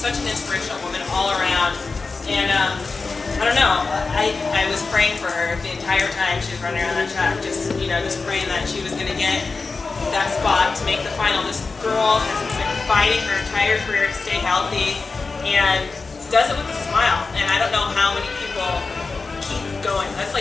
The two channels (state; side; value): quieter; right; 4.2 dB